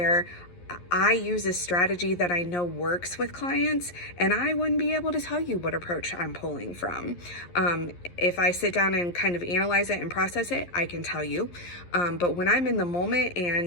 I use a strategy that I know works with clients, and I wouldn't be able to tell you what approach I'm pulling from. If I sit down and kind of analyze it and process it, I can tell you. But when I'm in the moment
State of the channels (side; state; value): right; late; 11 ms